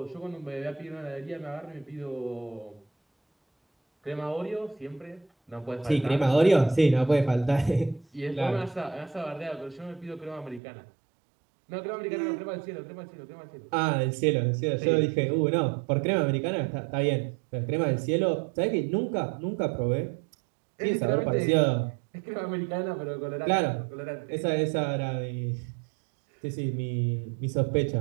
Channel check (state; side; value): drops out; left; at 10.6 s